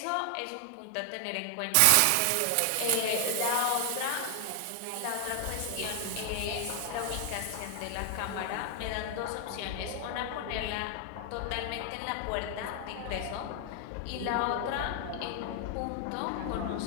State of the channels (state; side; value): different; both; correlation 0.00